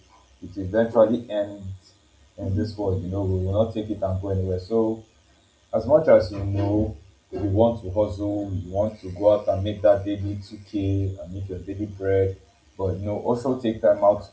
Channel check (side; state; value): both; identical; correlation 1.00